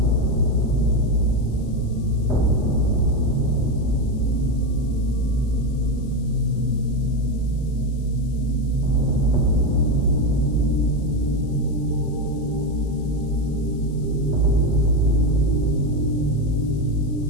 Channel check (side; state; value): left; noise; hiss, 28 dB below the sound